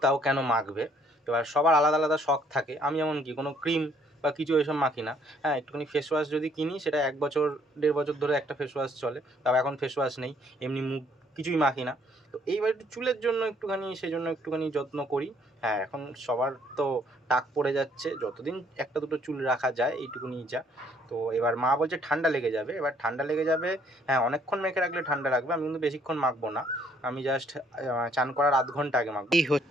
তাও কেন মাখবে। এবার সবার আলাদা আলাদা শখ থাকে, আমি এমন কি কোনো ক্রিম বা কিছু এসব মাখি না। হ্যাঁ, একটুখানি ফেস ওয়াশ যদি কিনি, সেটা 1 বছর 1.5 বছর ধরে একটা ফেস ওয়াশ চলে, তাও এখন ফেস ওয়াশ নেই, এমনি মুখ কিছুই মাখি না। তো এইবার একটু চুলের জন্য একটুখানি, সেই জন্য একটুখানি যত্ন করি। হ্যাঁ, এখন সবার তো টাক পড়ে যাচ্ছে, যতদিন একটা দুটো চুল রাখা যায় এইটুকুনি যা। তো এবার মা বলছে ঠান্ডা লেগে যাবে, এবার ঠান্ডা লেগে যাবে। হ্যাঁ, অনেকক্ষণ মেখে রাখলে ঠান্ডা লাগবে, আমি কিন্তু বেশিক্ষণ মাখবো না, আমি জাস্ট চান করার আধ ঘন্টা আগে মাখবো। এই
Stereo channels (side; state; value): both; normal; correlation 0.65